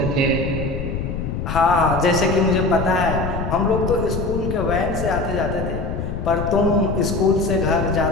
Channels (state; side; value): noise; left; rumble, 4 dB below the sound